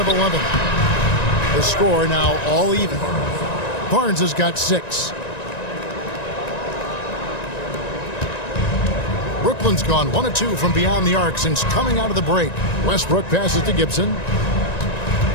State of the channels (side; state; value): right; late; 1.9 ms